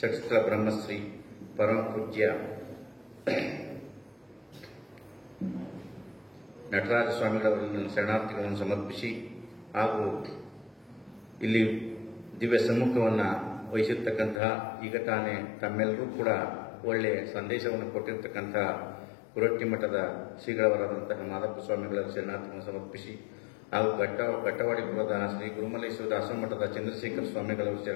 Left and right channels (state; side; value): drops out; right; at 14.4 s